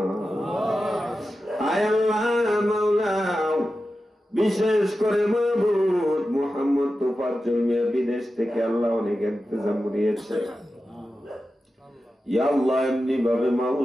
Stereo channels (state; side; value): normal; both; correlation 0.92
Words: আয় আল্লাহ মাওলা বিশেষ করে মাহবুব মুহাম্মদ তোফাজ্জল মিয়া বিদেশ থেকে আল্লাহ অনেক ইন্তজাম দিয়েছে। ইয়া আল্লাহ এমনি ভাবে